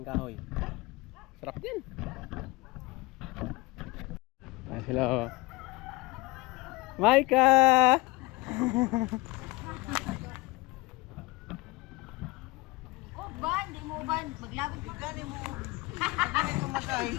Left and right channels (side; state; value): right; quieter; 23.2 dB